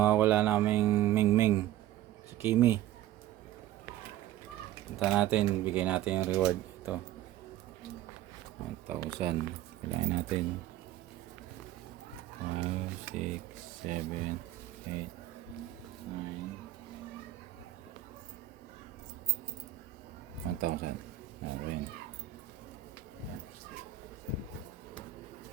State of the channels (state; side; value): quieter; left; 13.3 dB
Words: naming Mingming, si Kimi. Punta natin, bigay natin yung reward. Ito 1,000. Bilangin natin 5, 6, 7, 8, 9, 1,000. Ayan.